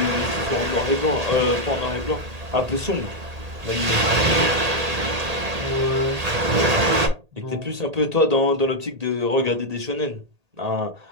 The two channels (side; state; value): left; late; 1.8 ms